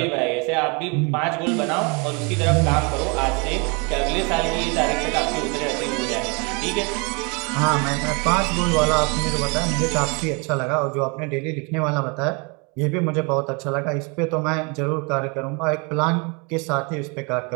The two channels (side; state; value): left; quieter; 31.9 dB